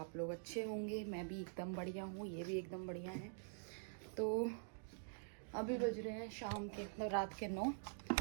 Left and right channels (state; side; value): silent; left; digital silence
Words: लोग अच्छे होंगे। मैं भी एकदम बढ़िया हूँ, ये भी एकदम बढ़िया है। तो अभी बज रहे हैं शाम के, मतलब रात के 9,